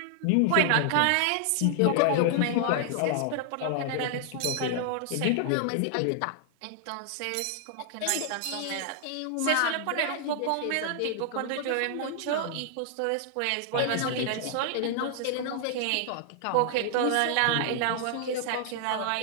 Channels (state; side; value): different; both; correlation 0.00